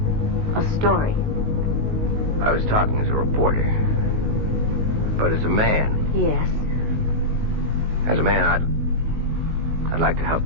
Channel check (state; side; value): late; left; 19 ms